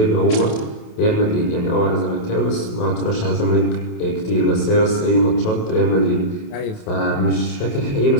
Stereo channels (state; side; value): late; right; 28 ms